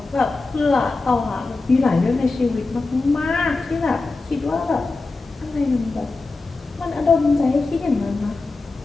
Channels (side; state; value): right; quieter; 3.6 dB